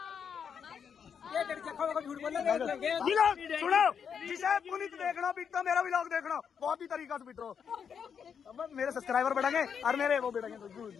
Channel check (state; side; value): quieter; right; 7.2 dB